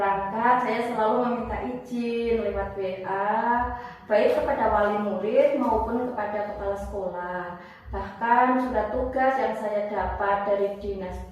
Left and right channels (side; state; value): both; identical; correlation 1.00